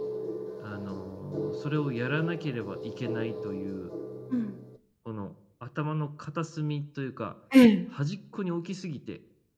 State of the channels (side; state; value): both; identical; correlation 1.00